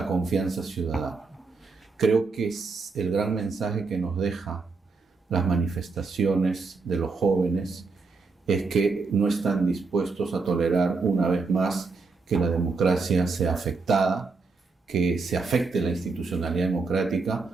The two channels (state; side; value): quieter; left; 4.3 dB